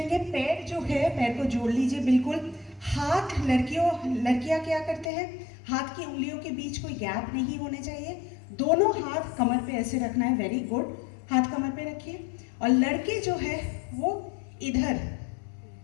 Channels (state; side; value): drops out; right; at 5.1 s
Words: पैर जो है, पैर को जोड़ लीजिए बिल्कुल। हाथ, लड़कियां क्या करते हैं, हाथ की उंगलियों के बीच कोई गैप नहीं होने चाहिए। दोनों हाथ कमर पे ऐसे रखना है। वेरी गुड, हाथ कमर पे रखिए। और लड़के जो है वो इधर